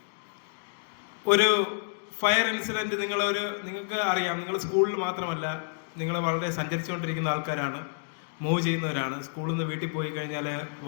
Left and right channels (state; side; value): silent; right; digital silence